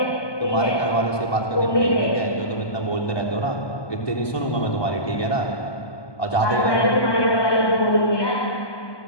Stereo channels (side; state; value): right; late; 1.2 ms